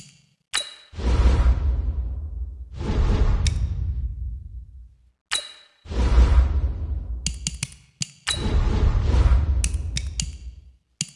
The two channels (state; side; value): identical; both; correlation 1.00